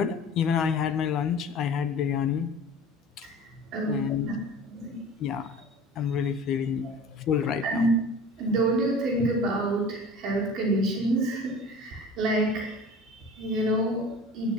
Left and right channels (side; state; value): both; normal; correlation 0.41